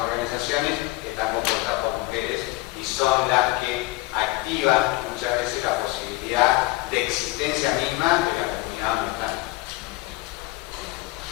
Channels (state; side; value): quieter; right; 21.2 dB